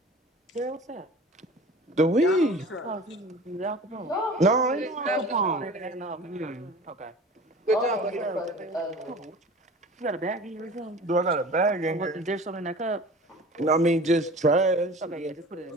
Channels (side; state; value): both; normal; correlation 0.41